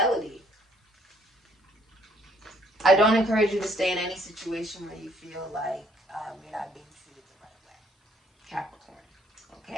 I don't encourage you to stay in any situation where you feel like you're not being treated the right way. Capricorn.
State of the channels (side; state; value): both; normal; correlation 0.64